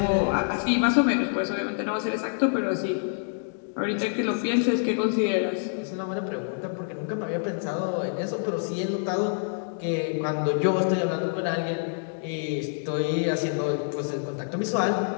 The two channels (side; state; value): right; silent; digital silence